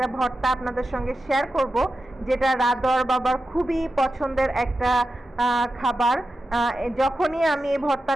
ভর্তা আপনাদের সঙ্গে শেয়ার করব, যেটা রাদর বাবার খুবই পছন্দের একটা খাবার। যখনই আমি এই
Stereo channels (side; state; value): both; normal; correlation 0.91